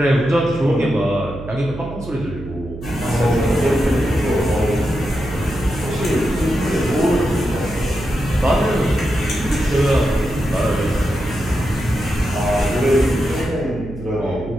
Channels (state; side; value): noise; right; hum, 12 dB below the sound